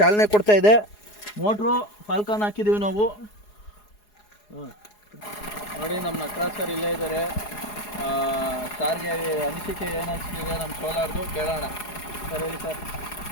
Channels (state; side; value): late; right; 4.8 ms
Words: ಕೊಡ್ತಾಯಿದೆ. ಮೋಟ್ರು ಫಾಲ್ಕಾನ್ ಹಾಕಿದ್ದೀವಿ ನಾವು. ನೋಡಿ ನಮ್ಮ ನಟರಾಜ್ ಸರ್ ಇಲ್ಲೇ ಇದ್ದಾರೆ. ಸಾರ್ಗೆ ಅನಿಸಿಕೆ ಏನು ಅನಿಸ್ತಿದೆ ನಮ್ಮ ಸೋಲಾರ್ದು ಕೇಳೋಣ. ಸರ್ ಹೇಳಿ ಸರ್.